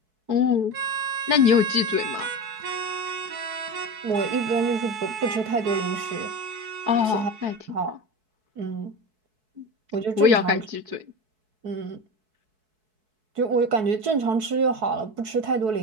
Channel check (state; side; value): late; left; 4.6 ms